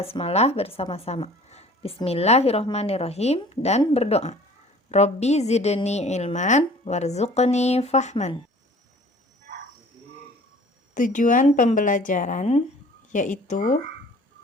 bersama-sama. Bismillahirrahmanirrahim dan berdoa. Robbi zidni ilman warzuqni fahman. Tujuan pembelajaran yaitu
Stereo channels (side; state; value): both; normal; correlation 0.49